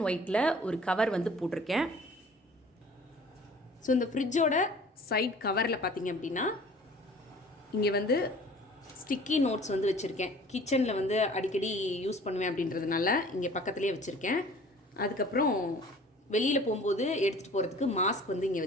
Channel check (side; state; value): both; normal; correlation 0.48